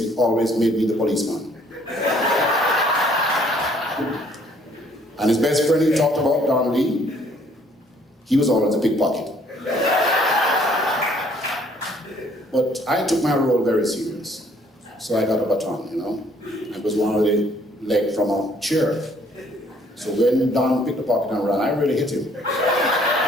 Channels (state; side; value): normal; both; correlation 0.62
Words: always made me the policeman. And his best friend he talked about, Don Lee, he was always a pickpocket. But I took my role very serious. So I got a baton, I was one of the leg from a chair. So when Don picked the pocket and ran, I really hit him.